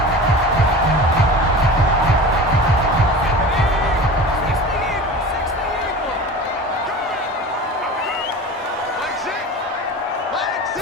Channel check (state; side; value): normal; both; correlation 0.35